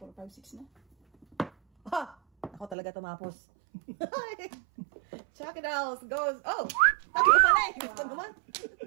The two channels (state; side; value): drops out; left; at 2.8 s